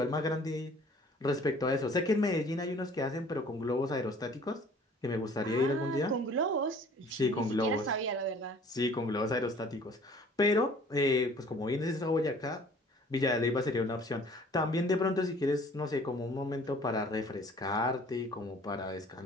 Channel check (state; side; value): normal; both; correlation 0.52